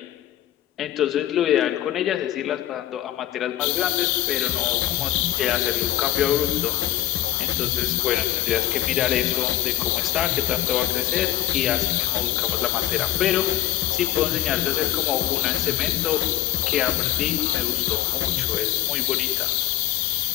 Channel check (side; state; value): right; quieter; 13.3 dB